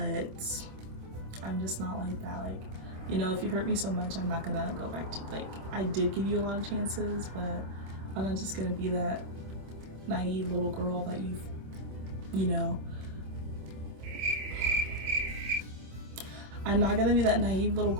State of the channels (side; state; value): left; late; 26 ms